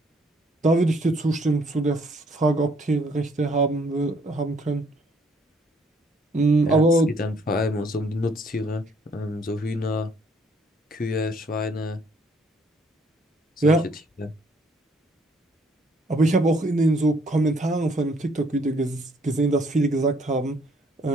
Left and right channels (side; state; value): both; normal; correlation 0.65